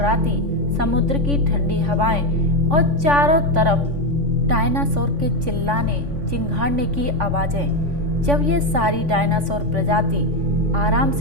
समुद्र की ठंडी हवाएं और चारों तरफ डायनासोर के चिल्लाने चिंघाड़ने की आवाजें। जब ये सारी डायनासोर प्रजाति आराम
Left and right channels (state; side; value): late; left; 3.5 ms